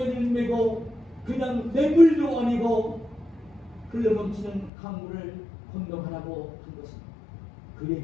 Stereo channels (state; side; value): drops out; right; at 4.7 s